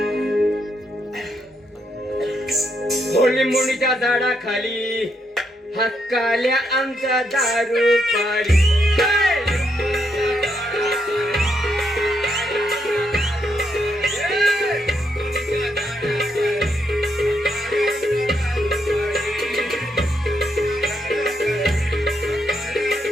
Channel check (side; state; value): both; normal; correlation 0.78